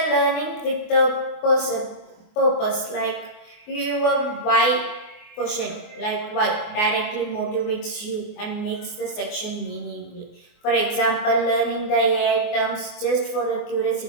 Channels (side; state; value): right; late; 24 ms